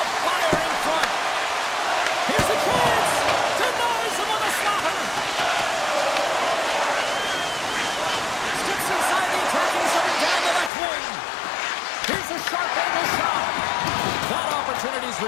fire in front. Here's a chance. Denies him with a slaughter. Steps inside the attacking zone down the left wing. Here's a sharp angle shot. That opportunity's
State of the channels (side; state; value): right; drops out; at 10.7 s